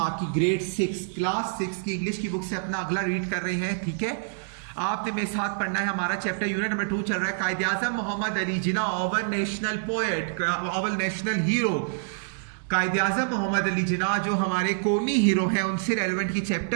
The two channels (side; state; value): left; silent; digital silence